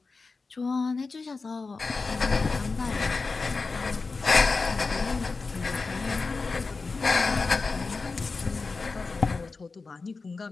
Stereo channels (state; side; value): quieter; right; 4.1 dB